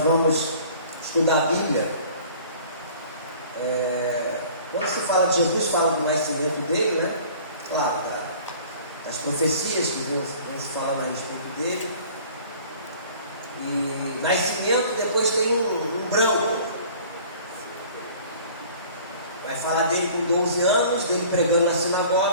vamos estudar a Bíblia, quando se fala de Jesus, fala do nascimento dele, né? Claro, as profecias que vão se falar a respeito dele. E nascimento, depois tem um branco. Vai falar dele com 12 anos, dele pregando na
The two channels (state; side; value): inverted; both; correlation -0.48